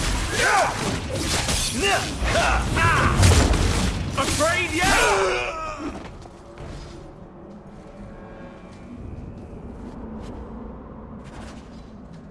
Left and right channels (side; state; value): both; identical; correlation 1.00